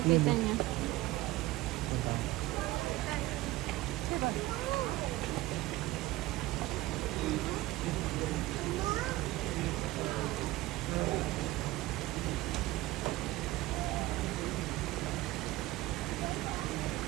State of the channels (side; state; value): left; quieter; 17.8 dB